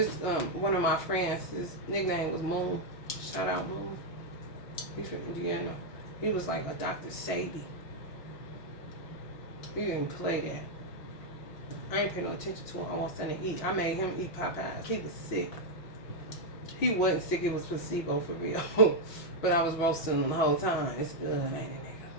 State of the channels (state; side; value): late; right; 6.2 ms